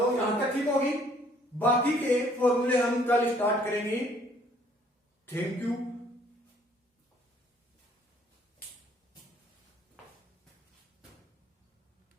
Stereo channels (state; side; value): normal; both; correlation 0.61